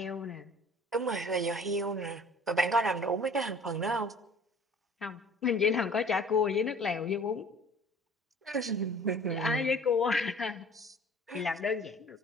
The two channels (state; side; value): normal; both; correlation 0.49